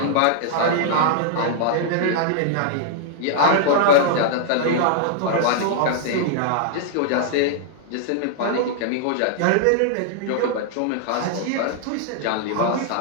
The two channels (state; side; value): different; both; correlation -0.01